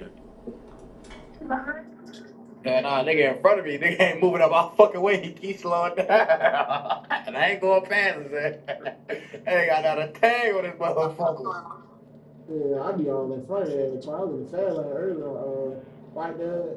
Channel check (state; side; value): identical; both; correlation 1.00